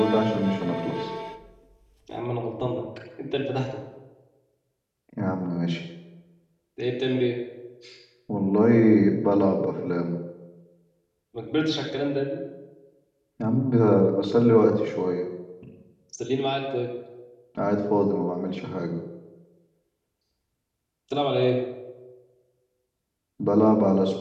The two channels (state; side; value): identical; both; correlation 1.00